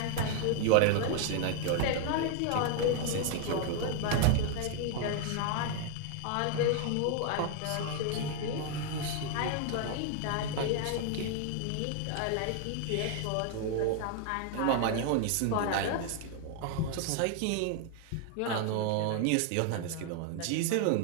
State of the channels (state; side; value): different; both; correlation 0.00